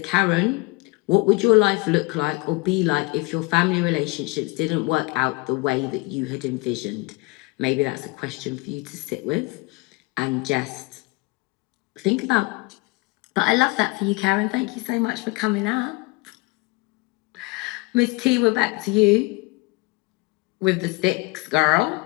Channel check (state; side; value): quieter; right; 25.5 dB